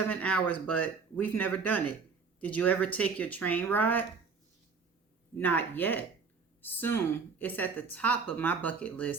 hours, but we've never done it. Did you ever take your train ride? Not yet. Soon. It's at the top of my bucket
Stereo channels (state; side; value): quieter; left; 5.2 dB